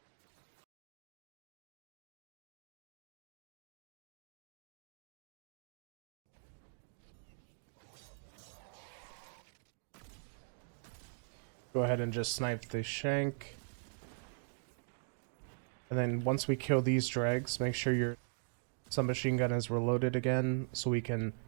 Go ahead and just snipe the shank. And then once we kill these dregs, make sure your submachine gun is reloaded again so we can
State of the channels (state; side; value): silent; left; digital silence